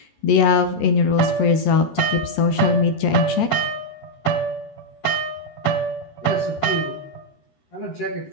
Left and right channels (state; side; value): late; right; 13 ms